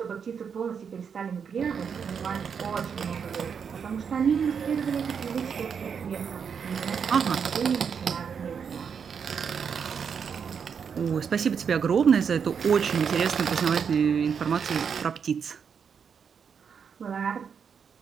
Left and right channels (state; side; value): quieter; left; 6.7 dB